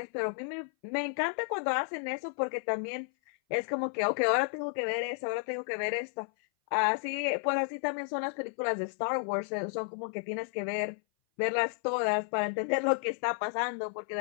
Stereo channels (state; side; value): silent; right; 56 dB below the other